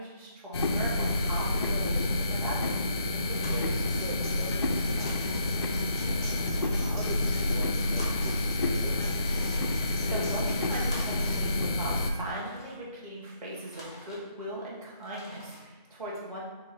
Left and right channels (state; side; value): inverted; both; correlation -0.73